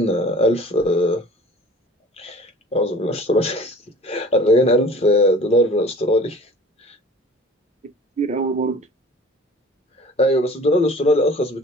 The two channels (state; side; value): normal; both; correlation 0.45